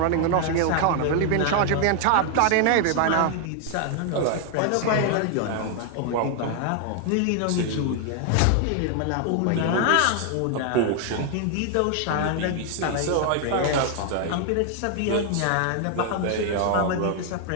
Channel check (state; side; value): different; both; correlation 0.00